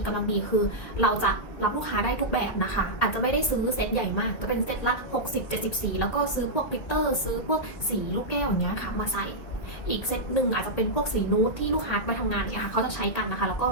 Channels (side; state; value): right; late; 1.9 ms